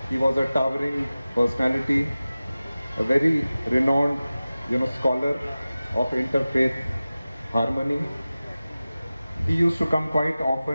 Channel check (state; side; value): inverted; both; correlation -0.96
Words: He was a towering personality, a very renowned, scholar of interfaith harmony. He used to come quite